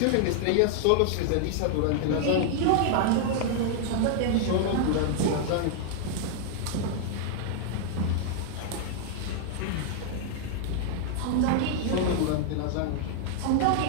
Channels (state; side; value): different; both; correlation 0.00